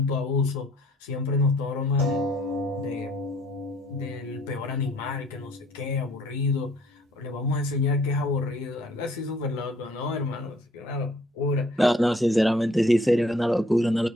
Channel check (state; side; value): normal; both; correlation 0.60